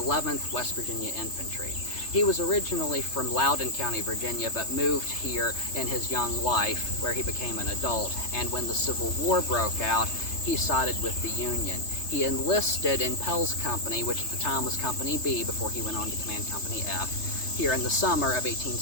West Virginia Infantry. He was originally from Loudoun County, Virginia, but moved here in his young life where he became an adult, and when the Civil War broke out, he sided with the Union. He enlisted in Pell's company, which at the time was Company B before he went on to command Company F, here in the summer of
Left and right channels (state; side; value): late; right; 3.3 ms